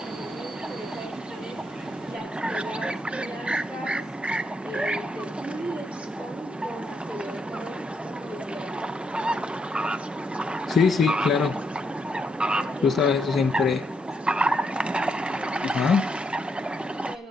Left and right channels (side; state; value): both; normal; correlation 0.77